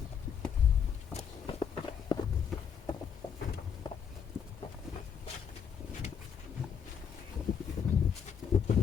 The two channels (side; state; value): right; quieter; 7.4 dB